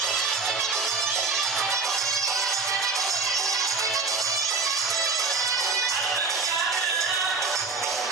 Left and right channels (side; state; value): left; quieter; 4.3 dB